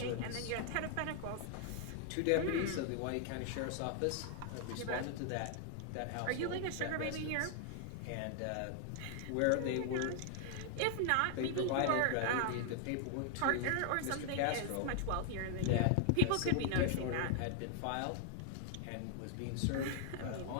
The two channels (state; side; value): different; both; correlation 0.00